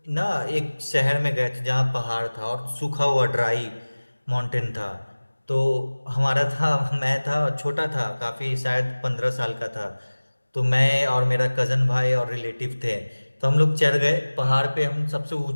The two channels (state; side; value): inverted; both; correlation -1.00